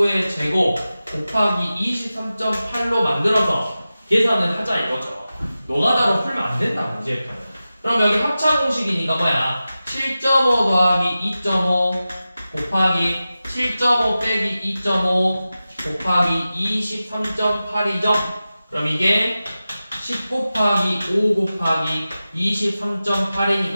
제곱 곱하기 23.8로 만들어서 계산을 하자 이거죠. 노가다로 풀면 안 된다, 문제일까요? 그럼 여기 합차 공식이니까 뭐야? 7.5 더하기 2.5 곱하기 7.5 빼기 2.5 곱하기 23.8이죠? 그럼 이게 10 곱하기 5 곱하기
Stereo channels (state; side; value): inverted; both; correlation -0.94